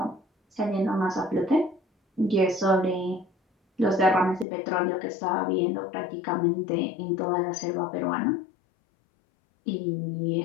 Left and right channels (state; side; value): drops out; right; at 4.5 s